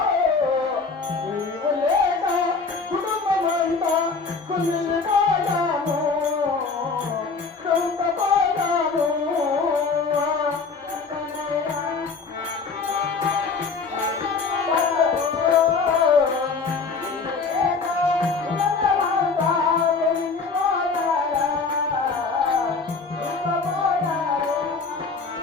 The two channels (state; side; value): quieter; right; 4.6 dB